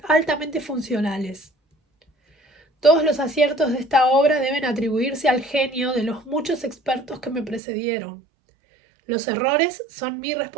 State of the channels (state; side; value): drops out; left; at 7.6 s